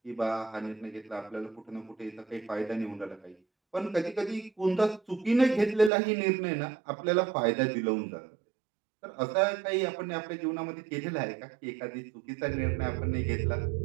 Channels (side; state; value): left; drops out; at 5.9 s